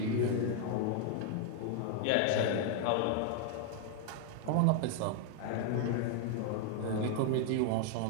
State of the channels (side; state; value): both; different; correlation 0.00